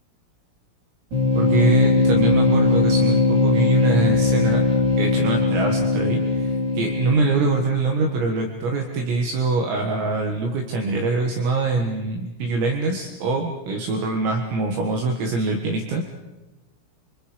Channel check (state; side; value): late; left; 17 ms